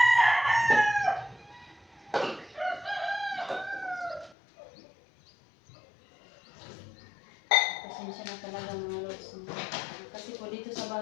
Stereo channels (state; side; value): drops out; right; at 4.4 s